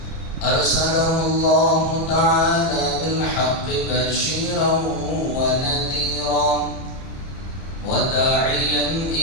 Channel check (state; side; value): late; right; 30 ms